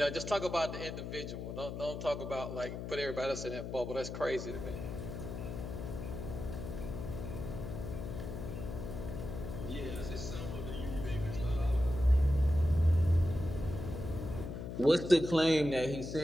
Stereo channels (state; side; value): noise; left; hum, 6 dB below the sound